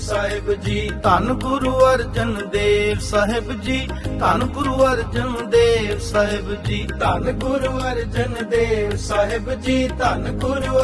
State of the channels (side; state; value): both; identical; correlation 1.00